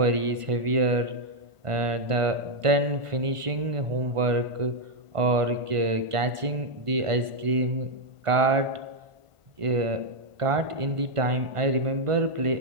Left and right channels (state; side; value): late; left; 1.5 ms